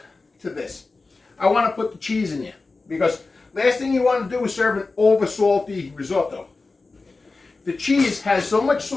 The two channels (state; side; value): quieter; right; 3.7 dB